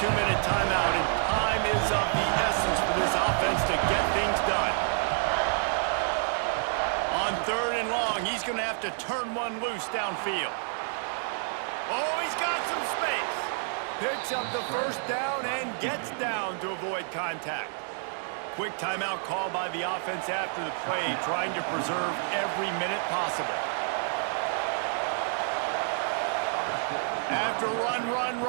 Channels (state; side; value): silent; left; 59 dB below the other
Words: 2-minute timeout, and time is of the essence for this offense to get things done. On 3rd and long, he's going to have to turn one loose downfield. Oh, he's got some space. Picks up the 1st down and gets down to avoid contact. Quick timeout call by the offense after the play, trying to preserve every minute possible. After run,